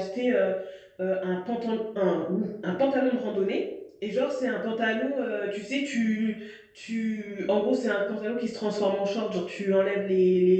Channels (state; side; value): identical; both; correlation 1.00